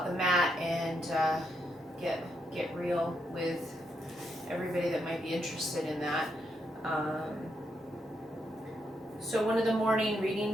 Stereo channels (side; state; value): both; normal; correlation 0.80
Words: the mat and get real with everybody that might be interested in that. So one of the morning